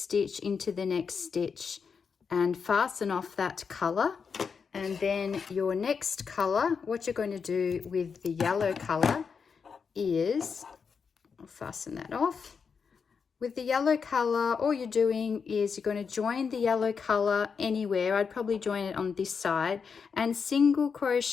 into the next stitch and fasten off that color. And then your next color, what you're going to do with the yellow color is, I'll fasten that off. With the yellow color, all you're doing is you're going to join the yellow color anywhere. I'd probably join it on this side and single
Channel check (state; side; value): quieter; right; 5.9 dB